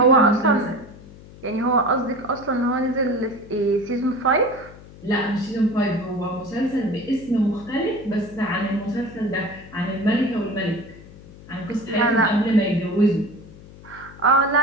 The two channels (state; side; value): noise; left; hum, 19 dB below the sound